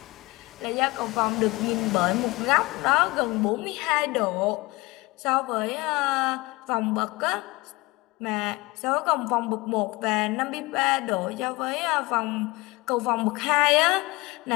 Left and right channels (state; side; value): quieter; right; 22.7 dB